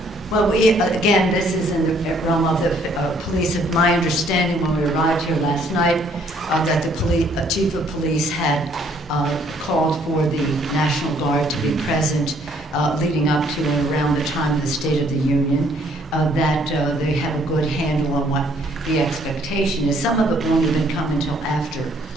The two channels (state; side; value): normal; both; correlation 0.64